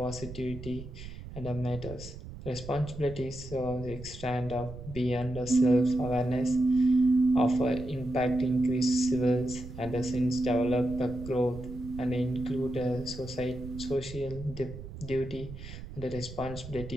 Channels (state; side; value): noise; right; rumble, 12 dB below the sound